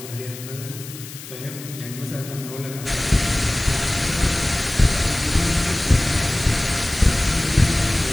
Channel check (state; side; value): noise; left; hiss, 14 dB below the sound